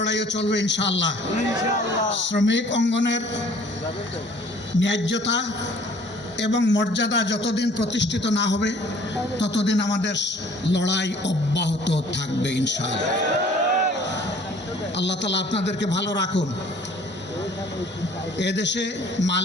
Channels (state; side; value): normal; both; correlation 0.54